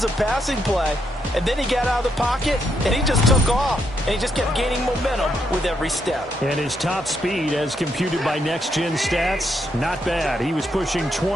a passing play, and then he got out of the pocket, and he just took off, and he just kept gaining momentum with every step. And his top speed, as computed by Next Gen Stats, not bad. He was pushing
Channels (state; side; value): normal; both; correlation 0.78